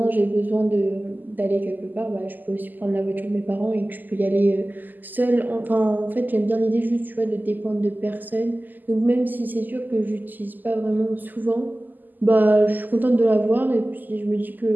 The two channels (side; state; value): left; late; 0.086 ms